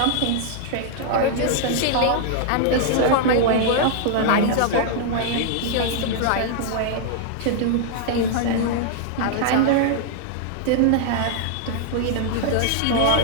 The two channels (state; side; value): different; both; correlation -0.01